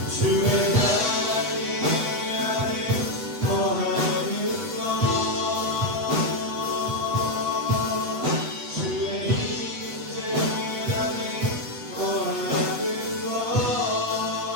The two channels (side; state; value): left; late; 8.1 ms